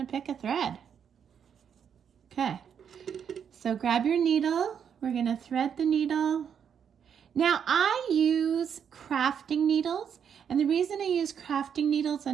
pick a thread. Okay, so grab your needle. We're gonna thread the needle. Now I use crafting needles, and the reason I use crafting needles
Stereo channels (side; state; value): left; quieter; 7.8 dB